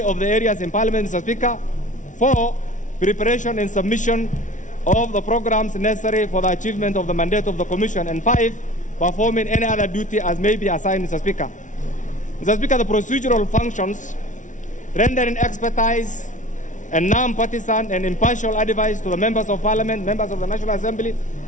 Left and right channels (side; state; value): right; late; 0.37 ms